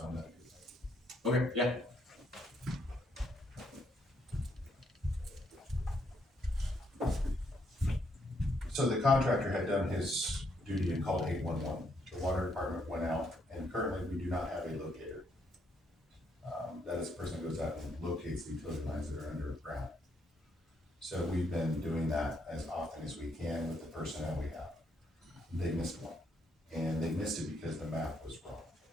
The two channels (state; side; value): normal; both; correlation 0.74